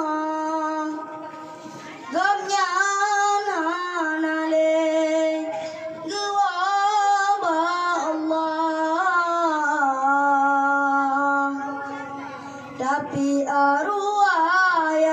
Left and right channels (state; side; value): identical; both; correlation 1.00